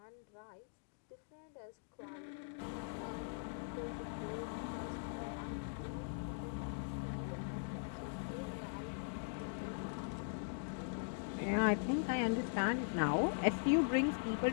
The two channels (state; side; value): silent; right; digital silence